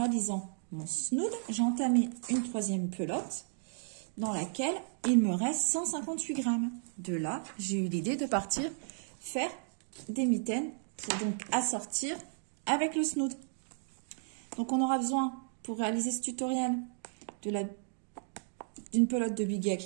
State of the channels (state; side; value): silent; left; digital silence